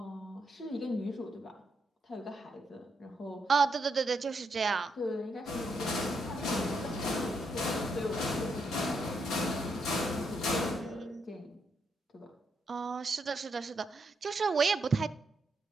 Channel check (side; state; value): both; normal; correlation 0.79